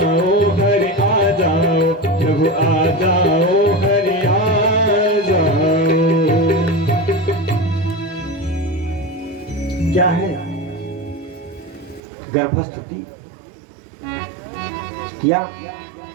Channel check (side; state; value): left; drops out; at 12.0 s